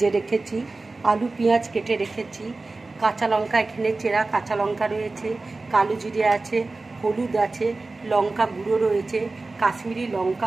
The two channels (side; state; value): left; quieter; 3.4 dB